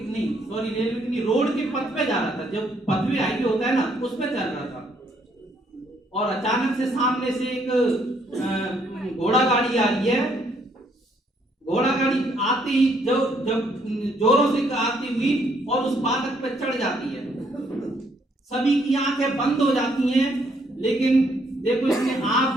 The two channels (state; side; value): normal; both; correlation 0.69